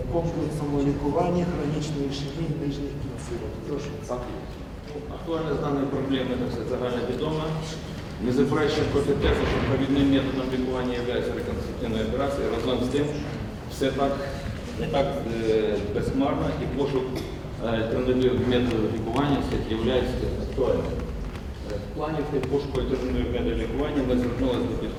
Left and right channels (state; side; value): identical; both; correlation 1.00